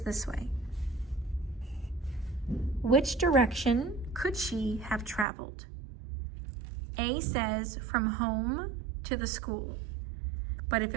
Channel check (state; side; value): drops out; left; at 5.2 s